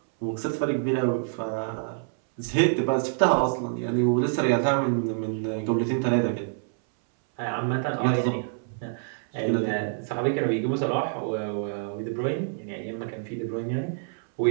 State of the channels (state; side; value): silent; left; 60 dB below the other